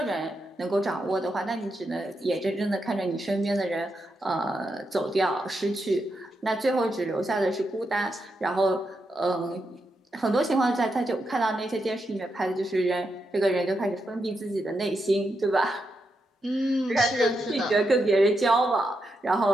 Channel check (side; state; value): both; normal; correlation 0.84